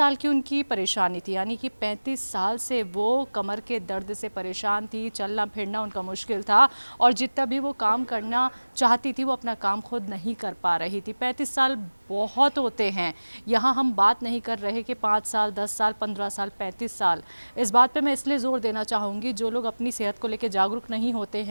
की उनकी परेशानी थी, यानी कि 35 साल से वो कमर के दर्द से परेशान थी, चलना फिरना उनका मुश्किल था और जितना भी वो काम करना चाहती थी वो अपना काम खुद नहीं कर पा रही थी। 35 साल बहुत होते हैं। यहाँ हम बात नहीं कर रहे कि 5 साल, 10 साल, 15 साल, 35 साल। इस बात पे मैं इसलिए ज़ोर देना चाहूँगी, जो लोग अपनी सेहत को लेकर जागरूक नहीं होते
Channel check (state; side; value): inverted; both; correlation -1.00